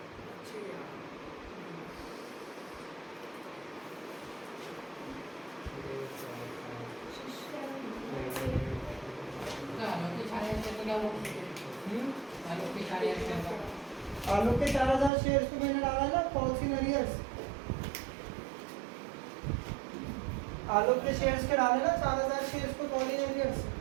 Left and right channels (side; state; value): left; drops out; at 15.1 s